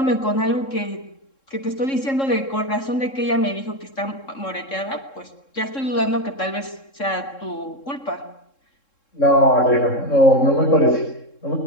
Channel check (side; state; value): right; late; 3.7 ms